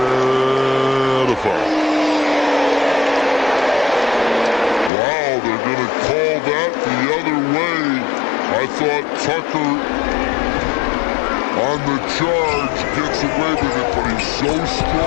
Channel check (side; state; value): right; drops out; at 4.9 s